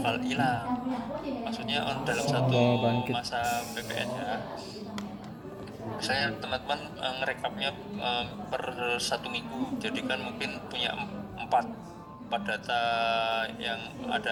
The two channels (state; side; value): identical; both; correlation 1.00